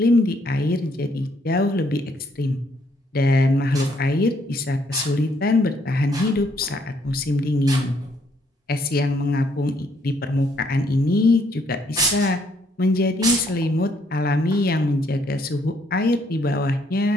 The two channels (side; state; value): both; normal; correlation 0.69